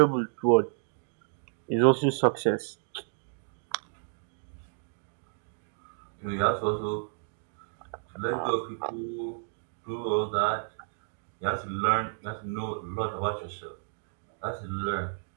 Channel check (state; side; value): silent; left; digital silence